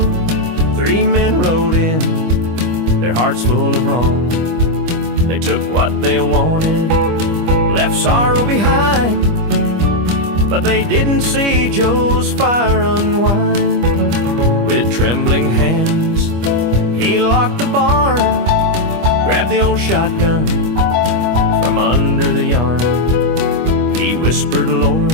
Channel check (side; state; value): left; late; 25 ms